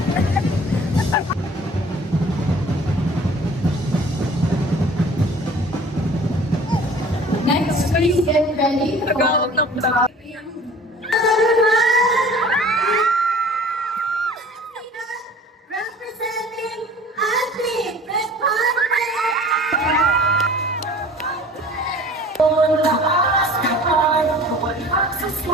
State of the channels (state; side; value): normal; both; correlation 0.47